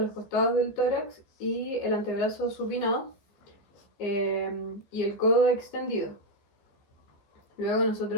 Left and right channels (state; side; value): late; right; 15 ms